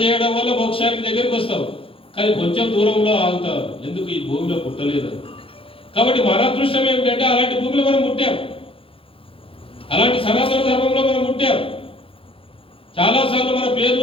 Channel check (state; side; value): late; right; 0.26 ms